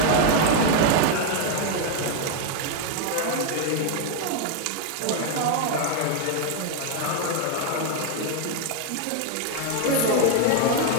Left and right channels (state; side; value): different; both; correlation 0.01